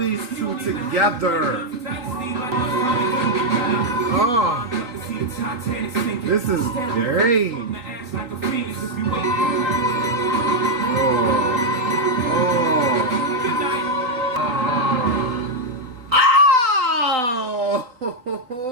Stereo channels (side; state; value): left; late; 3.9 ms